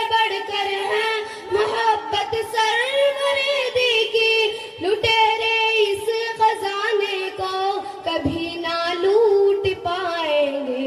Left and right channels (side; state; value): both; identical; correlation 1.00